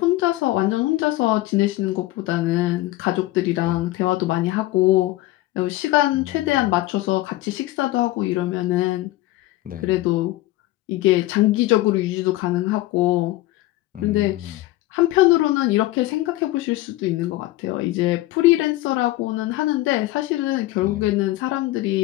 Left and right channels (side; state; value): right; quieter; 17.5 dB